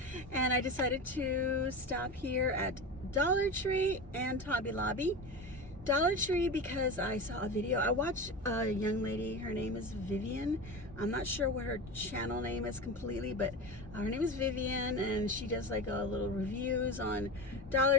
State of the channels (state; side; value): normal; both; correlation 0.26